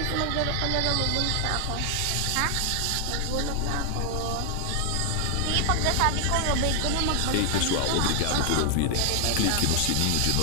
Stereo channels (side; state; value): both; different; correlation 0.00